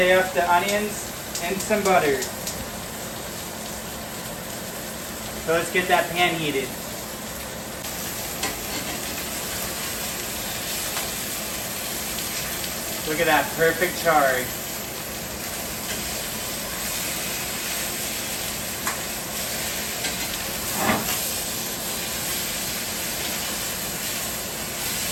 up the onions in some butter. So let's get that pan heated. Look at that perfect charred.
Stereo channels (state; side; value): identical; both; correlation 1.00